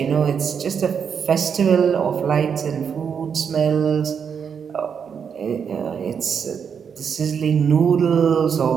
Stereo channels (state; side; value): quieter; left; 7.0 dB